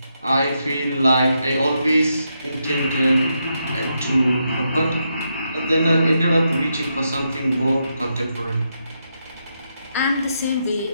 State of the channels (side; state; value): both; inverted; correlation -0.82